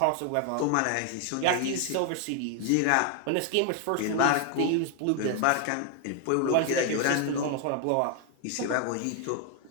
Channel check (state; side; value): different; both; correlation 0.00